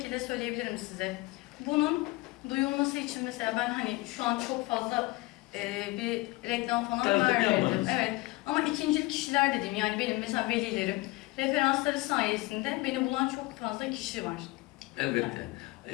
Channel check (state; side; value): quieter; right; 21.7 dB